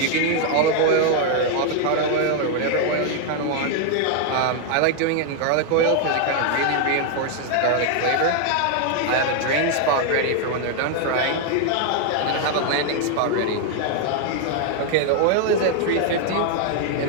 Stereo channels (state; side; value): different; both; correlation 0.00